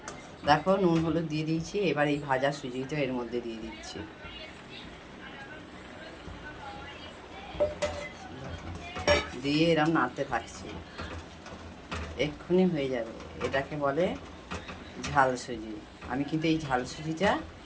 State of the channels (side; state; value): both; identical; correlation 1.00